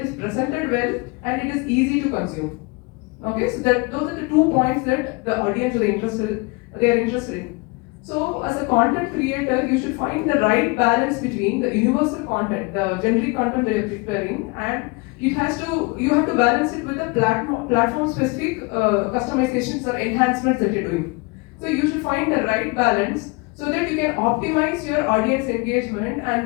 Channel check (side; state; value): right; quieter; 27.6 dB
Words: is presented well and it is easy to consume. Okay, so those are the 2 points that the audience are interested in. So as a content creator, you should find the right balance between the universal content, the generic content that you're preparing, and you have to balance it with the platform specific customizations or enhancements that you're doing. So you should find the right balance so that you can optimize your audience engagement